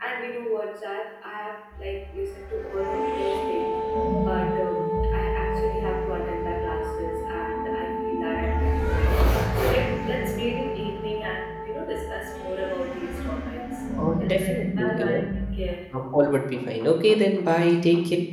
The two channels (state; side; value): identical; both; correlation 1.00